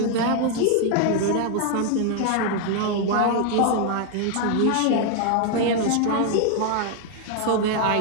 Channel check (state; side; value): different; both; correlation 0.00